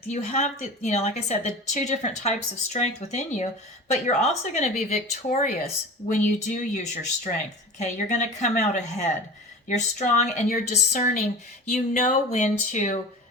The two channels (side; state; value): both; normal; correlation 0.35